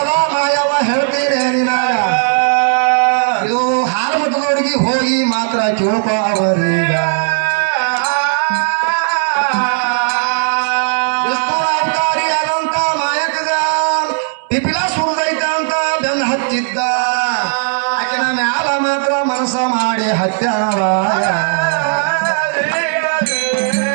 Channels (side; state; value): left; silent; digital silence